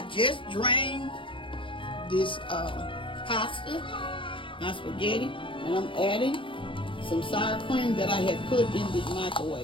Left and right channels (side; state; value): right; late; 0.25 ms